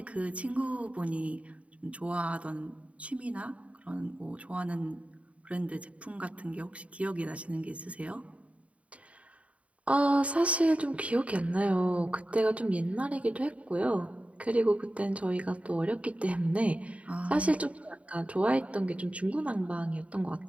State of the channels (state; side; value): late; left; 0.065 ms